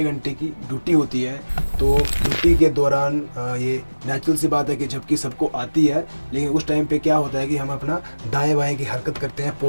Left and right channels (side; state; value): both; inverted; correlation -1.00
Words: घंटे की ड्यूटी होती है, तो ड्यूटी के दौरान ये नेचुरल सी बात है कि झपकी सबको आती है, लेकिन उस टाइम पे क्या होता है कि हम अपना दाएं बाएं की हरकत करते हैं,